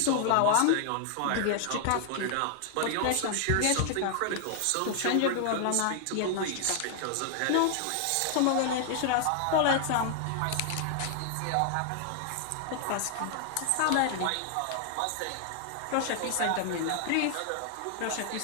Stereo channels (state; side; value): different; both; correlation 0.00